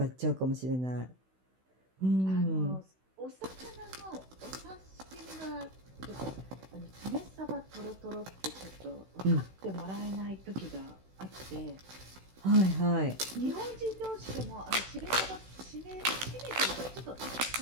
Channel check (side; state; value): left; late; 16 ms